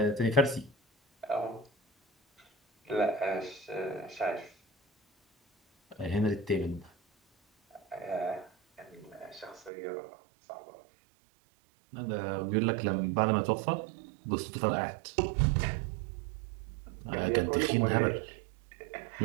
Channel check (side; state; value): left; drops out; at 9.7 s